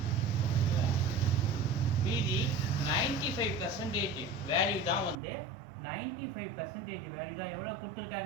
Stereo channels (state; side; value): drops out; left; at 5.2 s